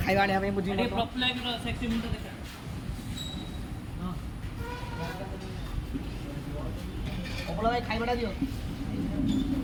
आने मुझे भाई खाइबाटा दियो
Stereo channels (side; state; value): both; identical; correlation 1.00